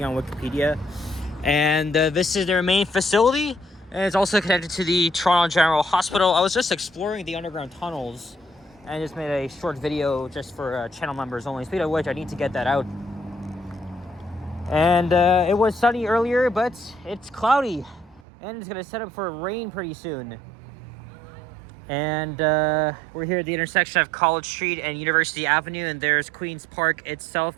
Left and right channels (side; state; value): left; drops out; at 18.2 s